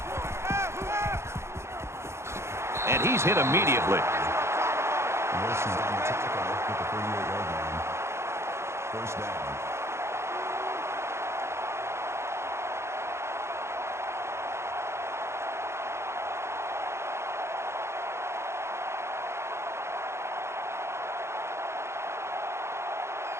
And he's hit immediately. Wilson's on the tackle with the 38-yard line. First down.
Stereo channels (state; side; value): late; left; 0.13 ms